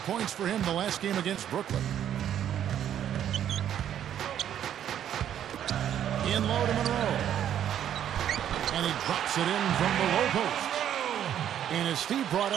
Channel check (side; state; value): left; quieter; 10.2 dB